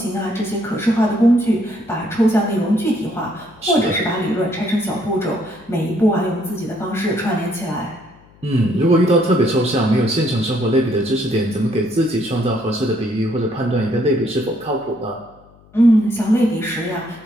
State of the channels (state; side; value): noise; left; hum, 27 dB below the sound